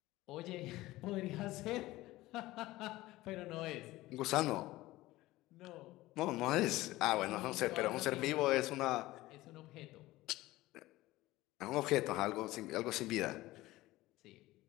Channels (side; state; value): right; quieter; 17.9 dB